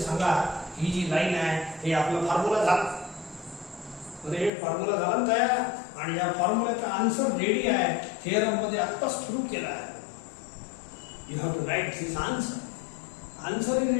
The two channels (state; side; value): drops out; right; at 4.5 s